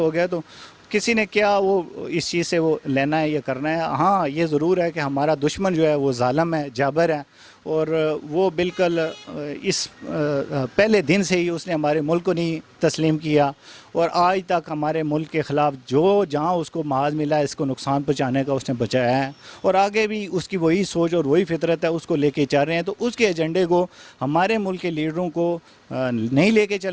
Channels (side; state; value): both; identical; correlation 1.00